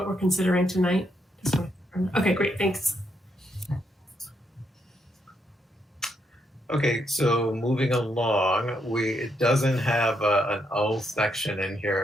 we're considering tonight. Okay, great. Thanks. Okay, so moving along, it doesn't have an O section in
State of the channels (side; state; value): both; normal; correlation 0.78